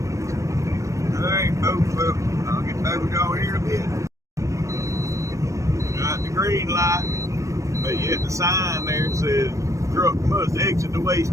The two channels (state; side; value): late; left; 0.15 ms